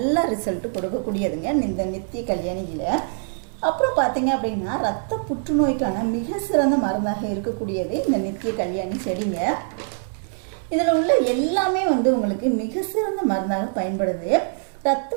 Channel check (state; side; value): silent; left; digital silence